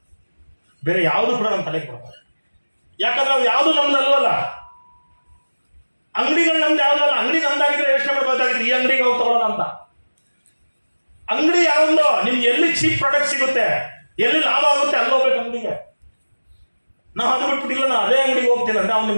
ಬೇರೆ ಯಾವುದು ಕೂಡ ನಮ್ಮ ತಲೆಗೆ ಬರಬಾರ್ದು. ಯಾಕಂದ್ರೆ ನಾವು ಯಾವುದು ನಮ್ದಲ್ವಲ್ಲ, ಅಂಗಡಿಗಳು ನಮ್ದು ಯಾವುದಲ್ಲ. ಅಂಗಡಿ ನಮ್ದಾಗಿದ್ರೆ ಯೋಚನೆ ಮಾಡಬೇಕಾಗಿತ್ತು ಈ ಅಂಗಡಿಗೆ ಹೋಗಿ ತಗೊಳ್ಳೋಣ ಅಂತ. ಅಂಗಡಿ ಯಾವ್ದೋ ನಿಮ್ಗೆ ಎಲ್ಲಿ ಚೀಪ್ ಪ್ರಾಡಕ್ಟ್ ಸಿಗುತ್ತೆ, ಎಲ್ಲಿ ಲಾಭ ಆಗುತ್ತೆ ಅಲ್ಲಿ ಹೋಗ್ಬೇಕು ಅಂಗಡಿಗೆ. ನಾವು ಅದು ಬಿಟ್ಬಿಟ್ಟಿಲ್ಲ, ನಾ ಅದೇ ಅಂಗಡಿಗೆ ಹೋಗ್ತೀನಿ ಅಂದ್ರೆ ಅವ್ನು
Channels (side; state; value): both; inverted; correlation -1.00